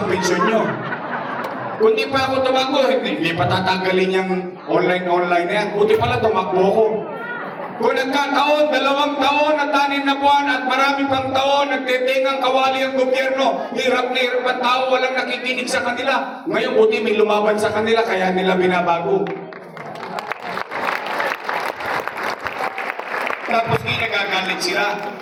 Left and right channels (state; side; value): identical; both; correlation 1.00